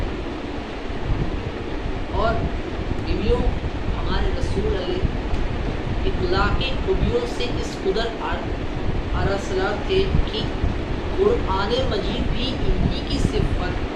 اور بیویوں ہمارے رسول علیہ اخلاقی خوبیوں سے اس قدر ارسلہ تھے کہ قرآن مجید بھی انہی کی صفت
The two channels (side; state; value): both; identical; correlation 1.00